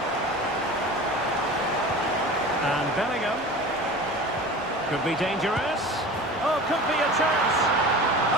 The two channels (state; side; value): normal; both; correlation 0.36